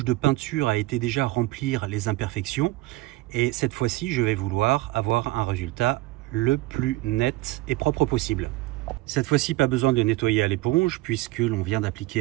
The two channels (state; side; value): quieter; left; 19.1 dB